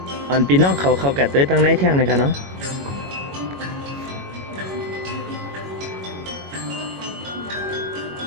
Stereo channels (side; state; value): left; late; 21 ms